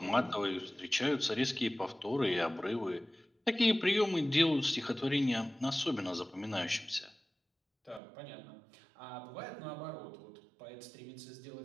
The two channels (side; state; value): left; drops out; at 8.0 s